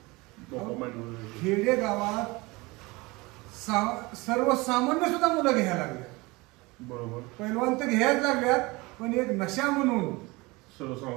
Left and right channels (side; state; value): left; quieter; 23.7 dB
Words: खेडे गावात सर्वसामान्य सुद्धा मुलं घ्यायला लागल्या. बरोबर. पैलवान तर घ्यायला लागल्यात, पण एक नशा म्हणून